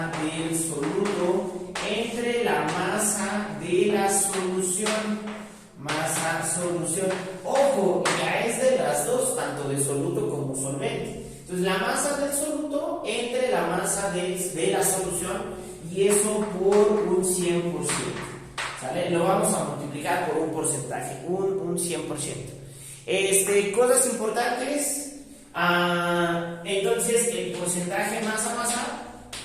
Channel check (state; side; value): identical; both; correlation 1.00